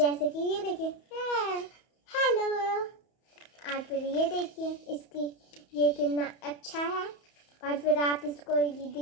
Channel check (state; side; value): late; right; 31 ms